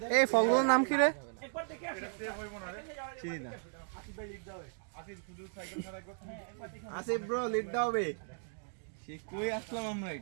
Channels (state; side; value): silent; left; digital silence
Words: দেখ এই ফলগুলোর নাম কি রে? একবার দেখে আসো চিনি না আসিফ ভাই লিখ দাও আসিফ শুধু সাইকেল ছাড়া করতে আসিফ ব্রো লিড দাও বে সে কই আসলাম আমরা